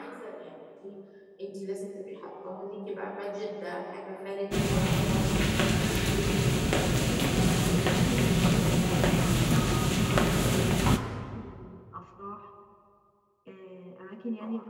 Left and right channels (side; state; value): both; identical; correlation 1.00